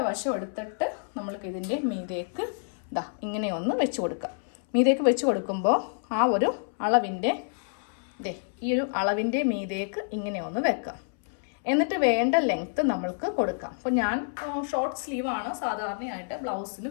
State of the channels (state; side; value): silent; right; 59 dB below the other